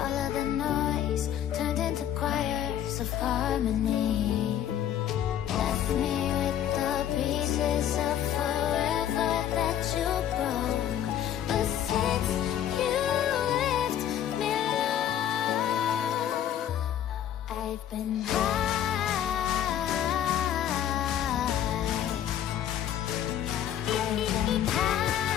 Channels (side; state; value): right; quieter; 10.6 dB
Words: of the noise turned into choirs of harmony. Left me with the pieces of forever that you broke. But since you left me alone, I've been high.